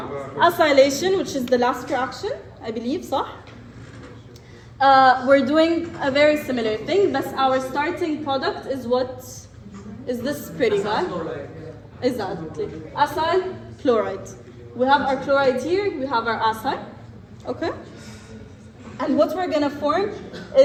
Acylation, which is the last reaction, I believe, صح? We're doing a very similar thing, but our starting product is what? Is this pretty guy? Exactly. Acyl chloride. We have our chloride here, we have our acyl. Okay? And what we're gonna form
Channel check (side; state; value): both; identical; correlation 1.00